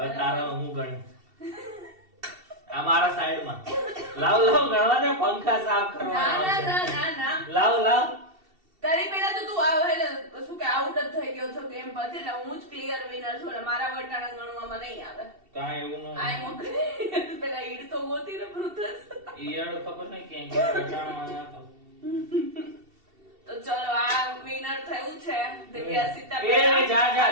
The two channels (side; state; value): left; late; 2.7 ms